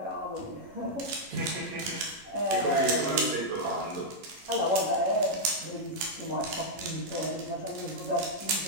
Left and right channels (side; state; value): left; late; 11 ms